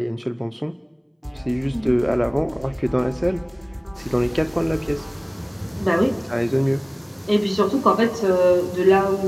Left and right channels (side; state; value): both; identical; correlation 1.00